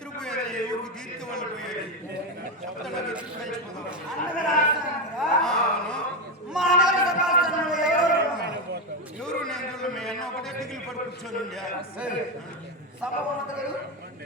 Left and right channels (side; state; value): both; normal; correlation 0.11